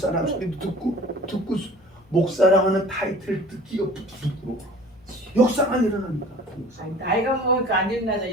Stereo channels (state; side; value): normal; both; correlation 0.46